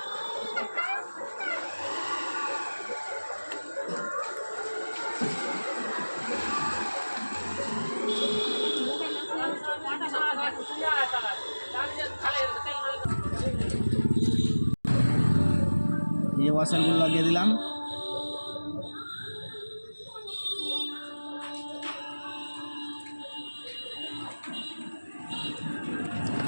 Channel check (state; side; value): inverted; both; correlation -1.00